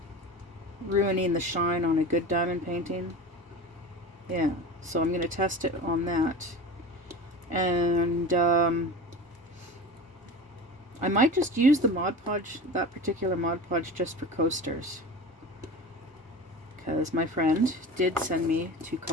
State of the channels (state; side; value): normal; both; correlation 0.32